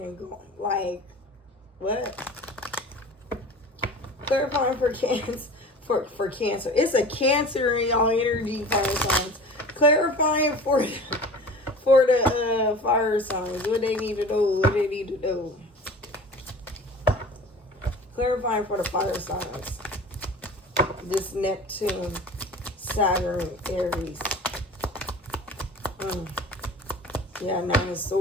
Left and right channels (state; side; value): normal; both; correlation 0.40